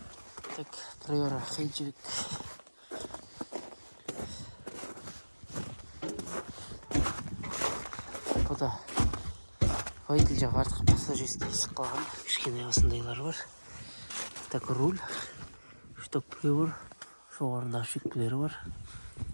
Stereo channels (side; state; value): both; inverted; correlation -1.00